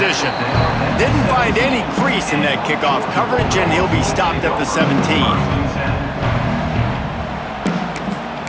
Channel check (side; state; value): both; identical; correlation 1.00